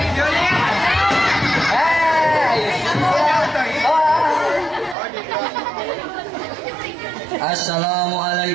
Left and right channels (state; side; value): drops out; left; at 5.0 s